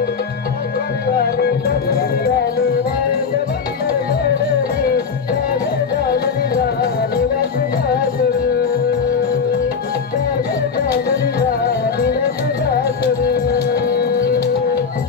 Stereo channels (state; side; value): quieter; right; 5.8 dB